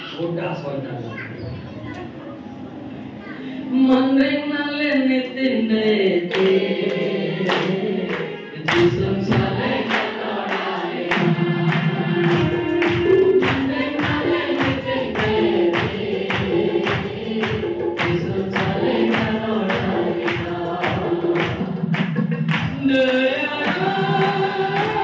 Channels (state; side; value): identical; both; correlation 1.00